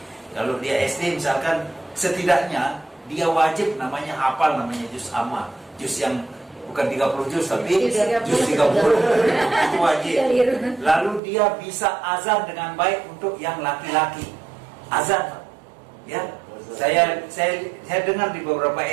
Kalau dia SD misalkan, setidaknya dia wajib namanya hafal namanya juz amma, juz yang bukan 30 juz tapi juz 30 itu wajib. Lalu dia bisa azan dengan baik untuk yang laki-laki, azan. Ya, saya dengar di beberapa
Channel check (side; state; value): left; drops out; at 11.2 s